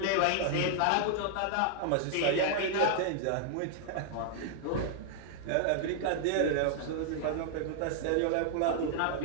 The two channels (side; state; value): both; different; correlation 0.00